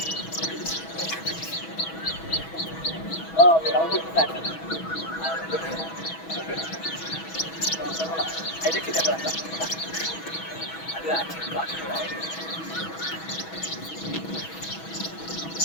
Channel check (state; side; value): late; right; 6.2 ms